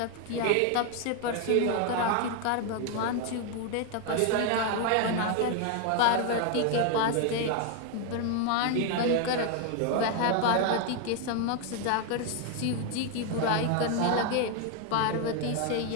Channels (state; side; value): different; both; correlation 0.01